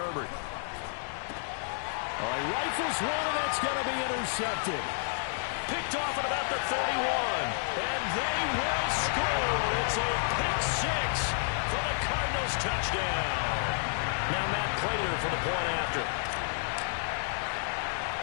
He rifles one, and that's going to be intercepted. Picked off at about the 31, and they will score. It's a pick 6 for the Cardinals touchdown. Now Matt Prater for the point after.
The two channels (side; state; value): right; silent; 57 dB below the other